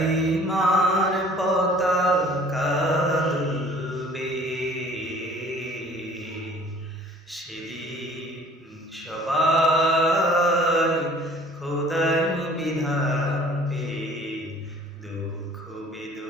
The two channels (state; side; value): normal; both; correlation 0.51